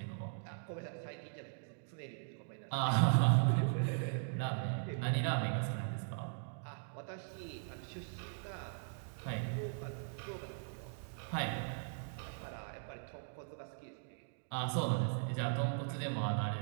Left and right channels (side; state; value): left; silent; digital silence